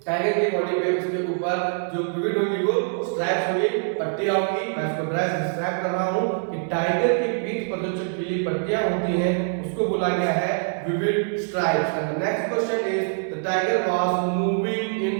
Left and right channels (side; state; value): left; silent; digital silence